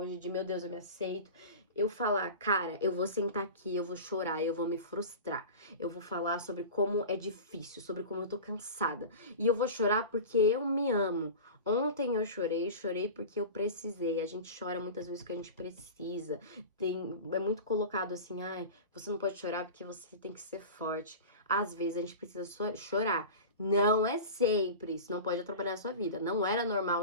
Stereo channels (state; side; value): inverted; both; correlation -0.32